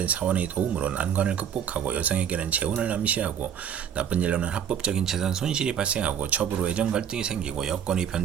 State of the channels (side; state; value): left; quieter; 8.6 dB